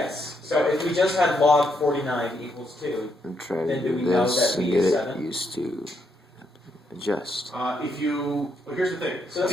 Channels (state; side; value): normal; both; correlation 0.77